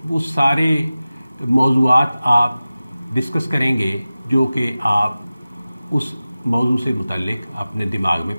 وہ سارے موضوعات آپ ڈسکس کریں گے جو کہ آپ اس موضوع سے متعلق اپنے دماغ میں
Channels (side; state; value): both; inverted; correlation -0.96